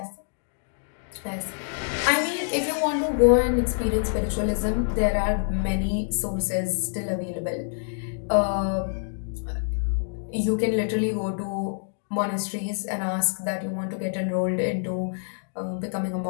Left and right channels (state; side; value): silent; right; digital silence